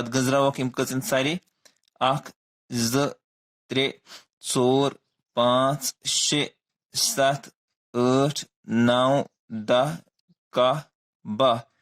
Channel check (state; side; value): identical; both; correlation 1.00